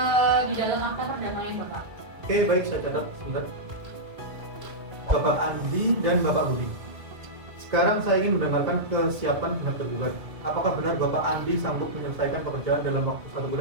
di dalam akta perdamaian Bapak. Oke, baik, saya catat sebentar. Bapak Andi dan Bapak Budi. Sekarang saya ingin mendengarkan kesiapan pihak tergugat. Apakah benar Bapak Andi sanggup menyelesaikan pekerjaan dalam waktu 1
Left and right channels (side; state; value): left; late; 2.0 ms